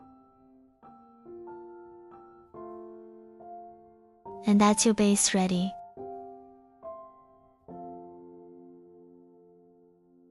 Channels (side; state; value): both; identical; correlation 1.00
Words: And that's your base ready.